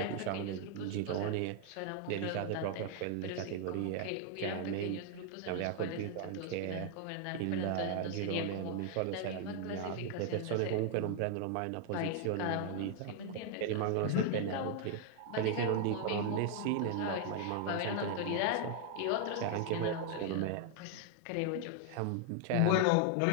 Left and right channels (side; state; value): both; different; correlation 0.00